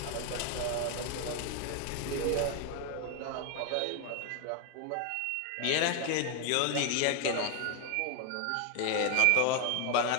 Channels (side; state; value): both; different; correlation 0.01